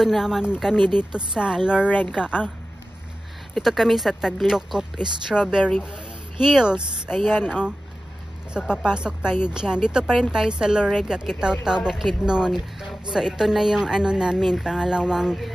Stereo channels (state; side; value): normal; both; correlation 0.95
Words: naman kami dito sa Lorega. Dito kami sa Taglokop Strawberry Hills. Ayan oh. So papasok tayo diyan. Dito pa rin tayo sa Lorega, Kitaw-Taw, Bukidnon. So ito na yung ano namin, pangalawang